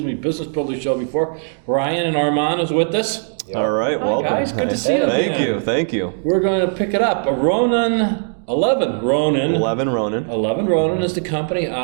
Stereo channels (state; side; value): silent; left; digital silence